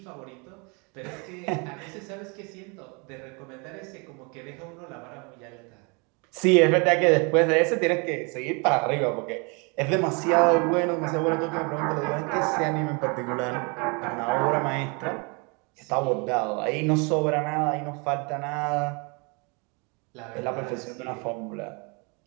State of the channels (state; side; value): quieter; left; 32.0 dB